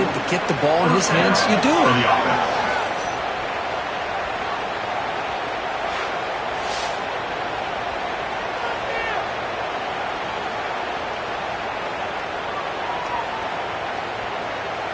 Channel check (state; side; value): identical; both; correlation 1.00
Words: to get the ball in his hands, you do it.